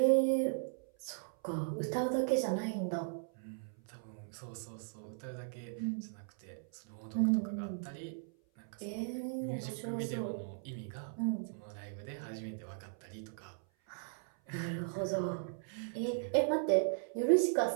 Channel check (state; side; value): silent; left; 53 dB below the other